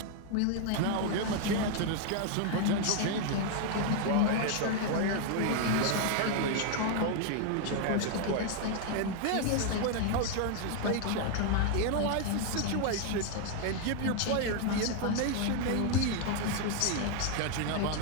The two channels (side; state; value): both; different; correlation 0.00